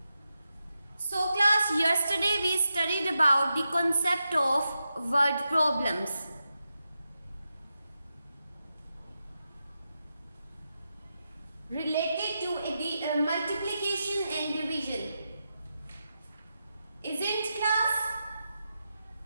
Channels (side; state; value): both; inverted; correlation -0.89